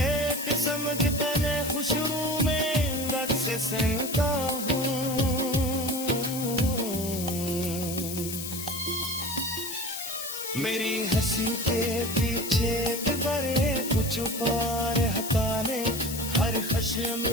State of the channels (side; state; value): left; noise; hiss, 7 dB below the sound